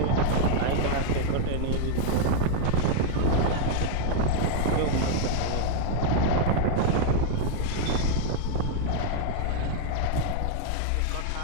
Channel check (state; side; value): different; both; correlation 0.00